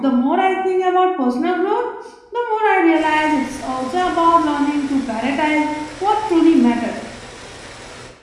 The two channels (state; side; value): identical; both; correlation 1.00